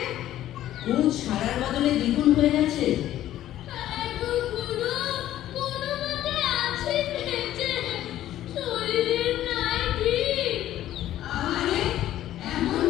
কোন সারার বদলে দ্বিগুণ হয়ে গেছে।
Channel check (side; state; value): right; quieter; 13.0 dB